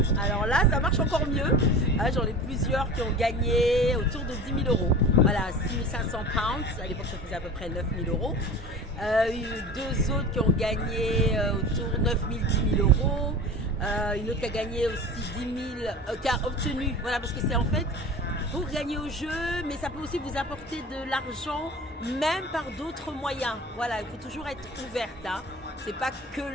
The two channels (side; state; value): both; normal; correlation 0.36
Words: alors là, ça marche encore mieux. J'en ai plusieurs qui ont gagné autour de 10 000 euros. Voilà, 6 500 pounds. À l'époque, ça faisait à peu près 9 000 euros. Deux autres qui ont gagné autour de 9 000, 10 000 euros. Une autre qui a gagné aussi 10 000, qui a obtenu. Voilà, parce que c'est en fait pour gagner au jeu, mais ça peut aussi vous apporter de l'argent, même par d'autres moyens. Voilà, il faut toujours être ouverte. C'est pas que